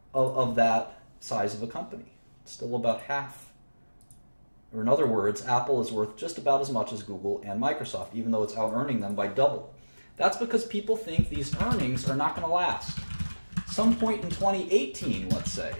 of that size of a company. It's still about half. Or in other words, Apple is worth just about as much as Google and Microsoft, even though it's out-earning them by double. That's because people think these earnings are not going to last. Some point in 2018, let's say,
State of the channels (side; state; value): both; inverted; correlation -1.00